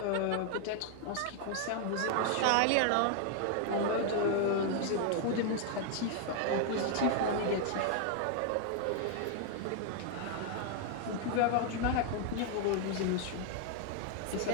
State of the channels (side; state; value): both; different; correlation 0.00